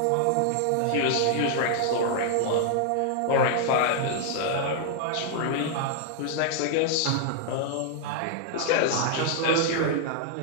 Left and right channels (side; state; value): both; different; correlation -0.01